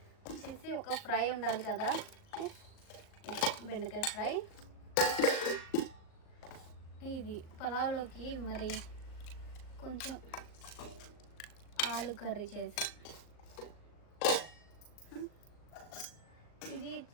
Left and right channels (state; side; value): late; right; 38 ms